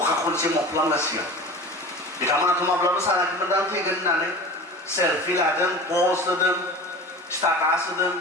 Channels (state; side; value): normal; both; correlation 0.36